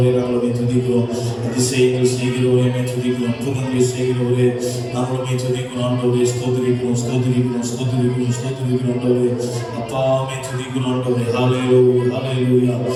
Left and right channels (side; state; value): both; identical; correlation 1.00